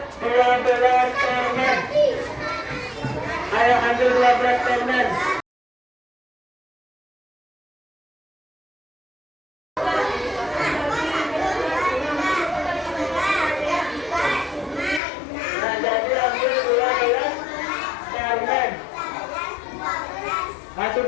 12 permen. Ayo ambil 12 permen. Nah, jadi ambil 12 permen. Nah,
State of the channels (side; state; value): right; drops out; at 15.0 s